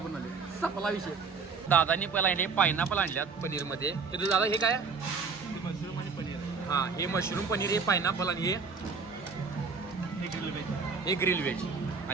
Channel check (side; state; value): left; quieter; 5.0 dB